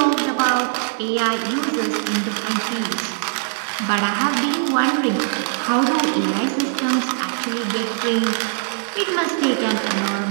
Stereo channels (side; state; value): left; silent; digital silence